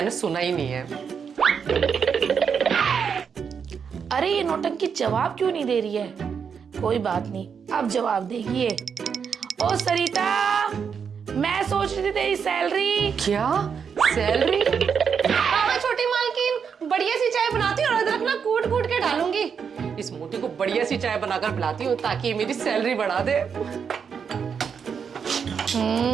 सुना ही नहीं है। अरे ये नौटंकी जवाब क्यों नहीं दे रही है? कोई बात नहीं, अब जवाब देगी ये। ओ सरिता, मैं सोच रही थी तेरी सैलरी। क्या सैलरी? हाँ छोटी मालकिन, बढ़िया सी चाय बनाती हूँ और अदरक ना कूट कूट के डालूंगी। इस मोटी को बढ़िया सी चाय बनाकर पिलाती हूँ ताकि ये मेरी सैलरी बढ़ा दे।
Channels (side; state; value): left; quieter; 6.7 dB